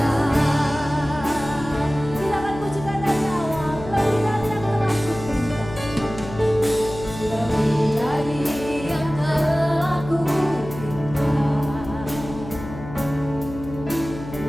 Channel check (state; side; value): noise; left; hum, 12 dB below the sound